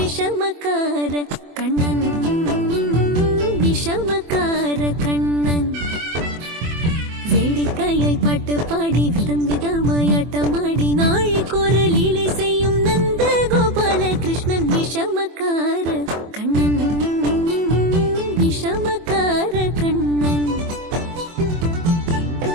கண்ணன் விஷமக்கார கண்ணன் வேடிக்கையாய் பாட்டு பாடி விதம் விதமாய் ஆட்டமாடி நாழிக்கொரு லீலை செய்யும் நந்த கோபால கிருஷ்ணன் விஷமக்கார கண்ணன் விஷமக்கார கண்ணன்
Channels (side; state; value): left; late; 24 ms